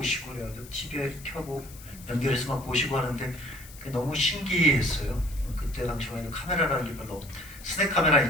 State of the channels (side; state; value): left; noise; hiss, 18 dB below the sound